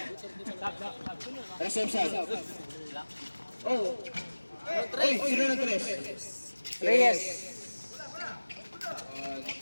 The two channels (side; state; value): both; inverted; correlation -1.00